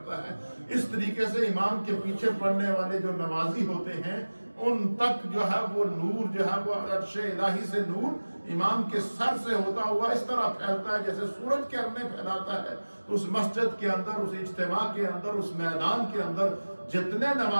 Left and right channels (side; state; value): both; inverted; correlation -1.00